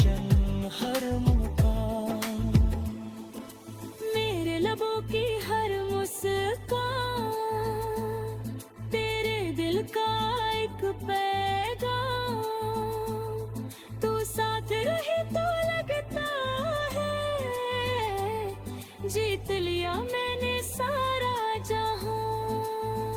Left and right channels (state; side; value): identical; both; correlation 1.00